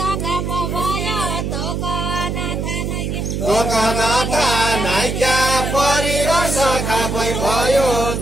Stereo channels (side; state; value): right; noise; hum, 2 dB below the sound